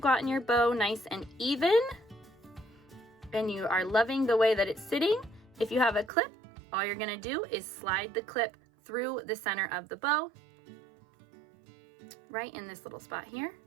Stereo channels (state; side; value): drops out; left; at 6.1 s